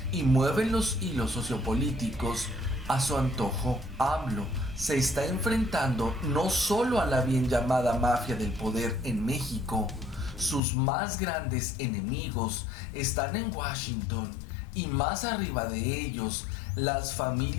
y mueven los hilos sociopolíticos a su antojo. AMLO se está enfrentando no solo a la bien llamada mafia del poder en México. Sus más grandes enemigos están en Washington y más arriba de ellos, las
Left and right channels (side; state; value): right; drops out; at 10.6 s